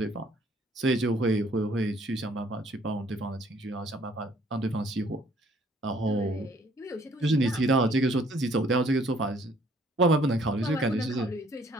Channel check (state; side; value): normal; both; correlation 0.61